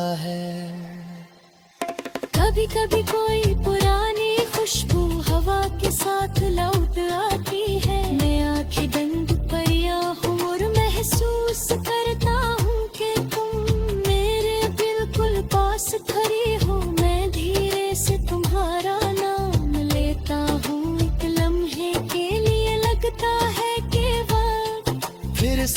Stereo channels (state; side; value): identical; both; correlation 1.00